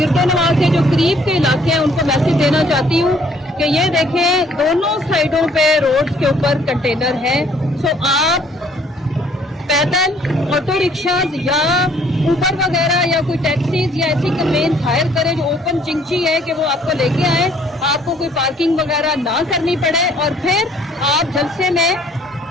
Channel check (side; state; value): both; normal; correlation 0.61